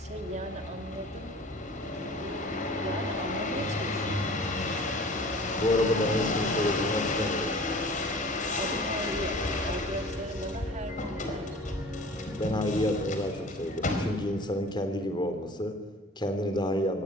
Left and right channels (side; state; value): both; normal; correlation 0.44